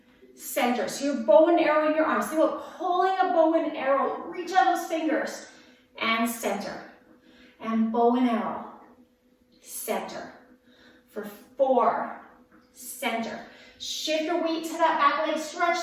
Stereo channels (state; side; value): identical; both; correlation 1.00